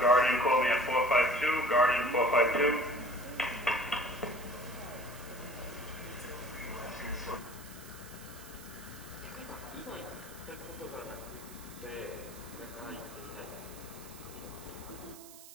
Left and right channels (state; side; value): noise; right; hiss, 17 dB below the sound